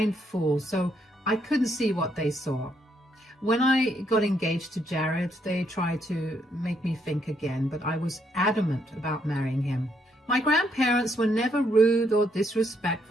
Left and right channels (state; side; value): normal; both; correlation 0.74